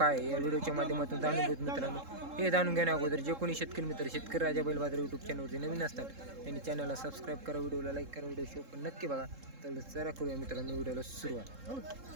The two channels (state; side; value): late; left; 3.7 ms